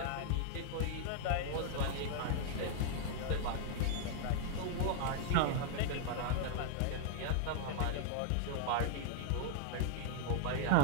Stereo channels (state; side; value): different; both; correlation 0.00